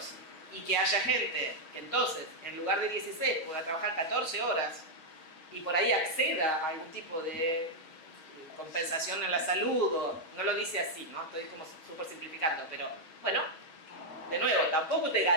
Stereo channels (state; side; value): late; right; 6.2 ms